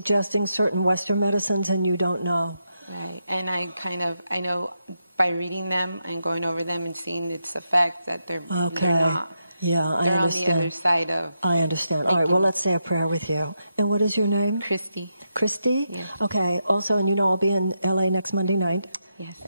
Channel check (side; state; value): both; inverted; correlation -0.84